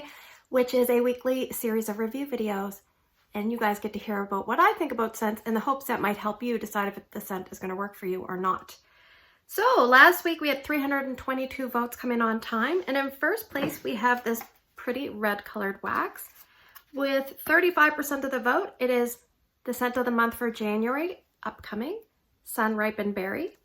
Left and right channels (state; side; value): identical; both; correlation 1.00